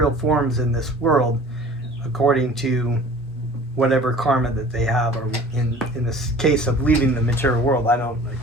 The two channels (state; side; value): normal; both; correlation 0.45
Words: forms in this world, according to whatever karma that they have, or in this case of leaving the material world. I don't,